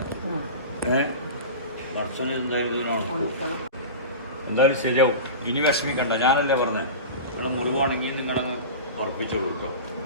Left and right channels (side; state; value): both; inverted; correlation -0.30